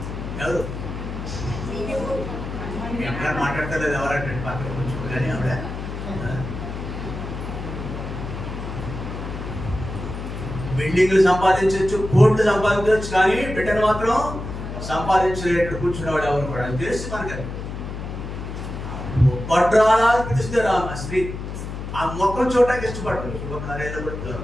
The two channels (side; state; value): left; noise; hum, 7 dB below the sound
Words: ఎవరు ఎక్కడ మాట్లాడతలేదు, ఎవరంటే పక్కన కొంచెం కానీ ఆవిడ బిల్డింగ్లు సంపాదించవచ్చు, కోట్లు సంపాదించవచ్చు, కానీ బిడ్డను మాత్రం సంపాదించలేడు కూర్చున్నవాడు ఎవరు కూడా. అది తెలుసు మనకి. పడ్రాలా పిలుస్తారు ఆ స్త్రీ, ఆ మొక్కలు చూడటానికి ఇష్టపడతారు. శుభకార్యాలు కూడా